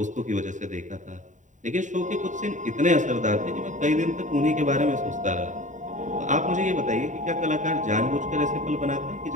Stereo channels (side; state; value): left; late; 0.36 ms